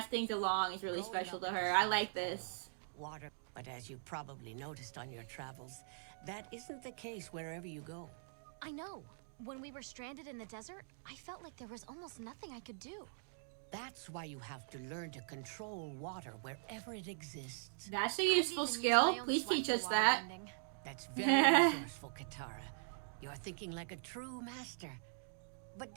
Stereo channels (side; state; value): left; silent; digital silence